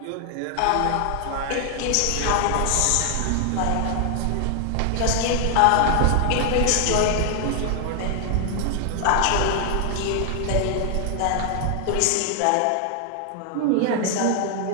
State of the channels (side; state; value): both; different; correlation 0.00